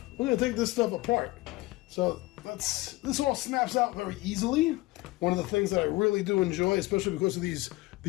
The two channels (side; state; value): right; quieter; 20.6 dB